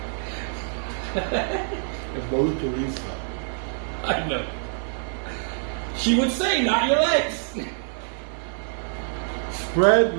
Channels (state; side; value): silent; left; digital silence